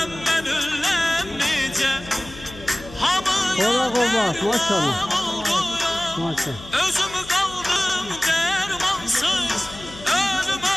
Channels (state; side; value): noise; left; hum, 16 dB below the sound